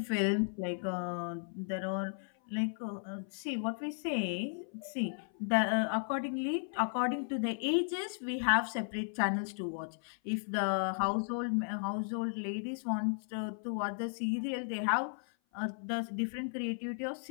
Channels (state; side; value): silent; right; 54 dB below the other